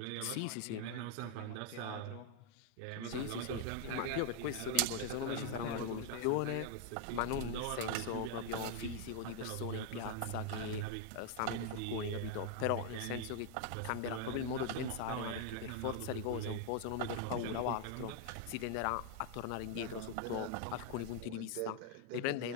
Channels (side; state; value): both; different; correlation 0.00